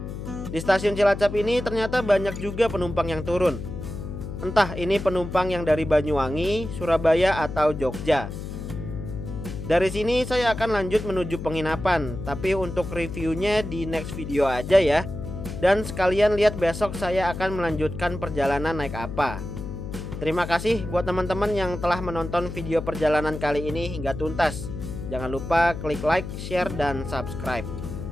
Di stasiun Cilacap ini ternyata banyak juga penumpang yang turun. Entah ini penumpang yang dari Banyuwangi, Surabaya atau Jogja. Dari sini saya akan lanjut menuju penginapan, tapi untuk reviewnya di next video aja ya. Dan sekalian lihat besok saya akan melanjutkan perjalanan naik apa. Terima kasih buat teman-teman yang telah menonton video perjalanan kali ini hingga tuntas. Jangan lupa klik like, share, dan subscribe.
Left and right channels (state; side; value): noise; left; hum, 8 dB below the sound